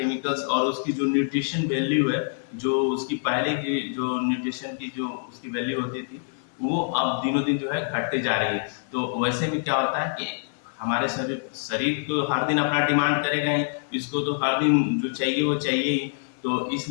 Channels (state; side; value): silent; right; 61 dB below the other